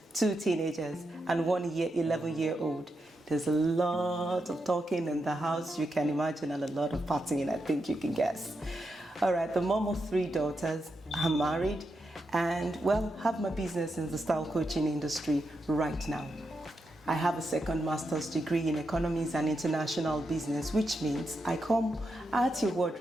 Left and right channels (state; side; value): normal; both; correlation 0.85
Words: 2 teenagers, and 1 11-year-old. There's a lot of talking in the house, you can imagine, and a lot of partying, I think you can guess. All right, the mom of 3 daughters, I'm married, and have my business in the style coaching industry right now. I have a second master's degree in economics and international business, which means I come at your